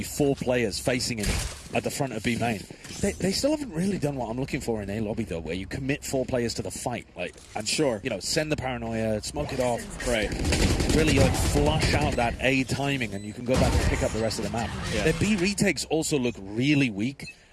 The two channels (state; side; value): identical; both; correlation 1.00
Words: 4 players facing him at the front of B main. They still haven't really done what I'm looking for in A lobby, though, where you commit 4 players to the fight. Like, and sure, you know, send the paranoia, smoke it off. Right. Really, like, flush out that A timing, and you can go back and pick up the rest of the map. Yeah. Their B retakes also look really weak,